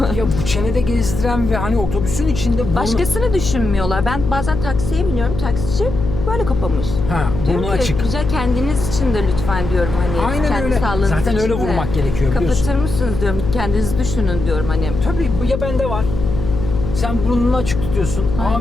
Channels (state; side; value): noise; left; hum, 5 dB below the sound